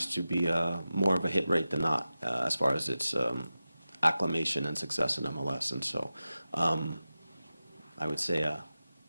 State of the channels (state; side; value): inverted; both; correlation -0.94